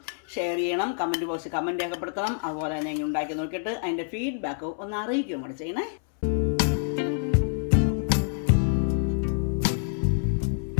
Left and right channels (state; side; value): silent; right; 59 dB below the other